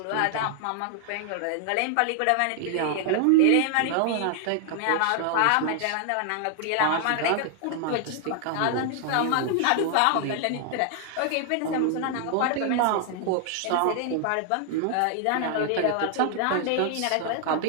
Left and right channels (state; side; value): different; both; correlation 0.00